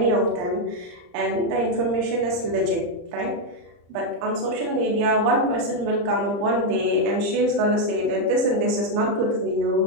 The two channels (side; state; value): left; late; 34 ms